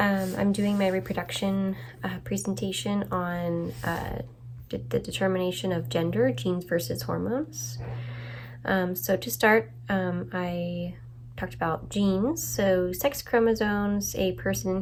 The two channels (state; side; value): identical; both; correlation 1.00